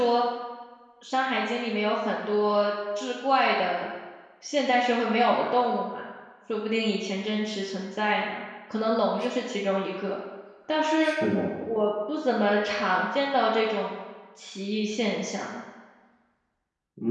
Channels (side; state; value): both; identical; correlation 1.00